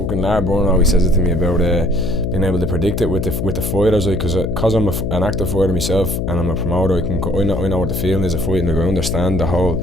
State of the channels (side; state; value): left; noise; hum, 1 dB below the sound